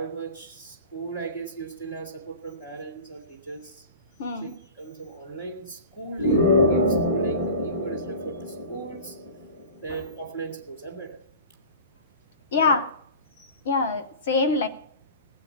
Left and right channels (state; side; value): inverted; both; correlation -0.36